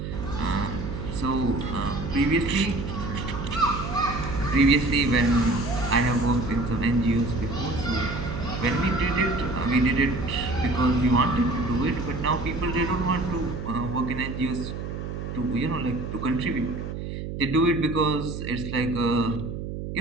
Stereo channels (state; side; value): noise; right; hum, 6 dB below the sound